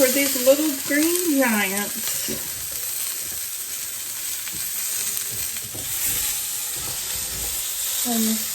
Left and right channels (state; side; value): identical; both; correlation 1.00